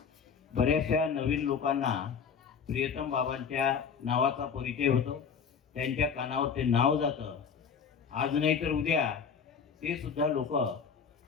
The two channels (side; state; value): right; quieter; 6.5 dB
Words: बऱ्याचशा नवीन लोकांना प्रियतम बाबांच्या नावाचा परिचय होतो, त्यांच्या कानावर ते नाव जातं। आज नाही तर उद्या ते सुद्धा लोक